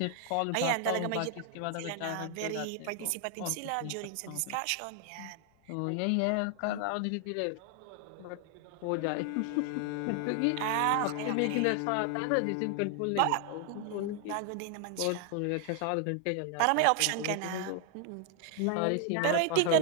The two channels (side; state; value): both; different; correlation 0.00